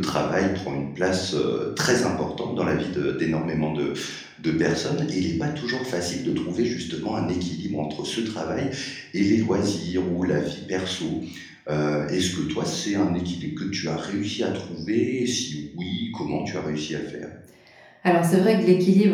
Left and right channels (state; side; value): identical; both; correlation 1.00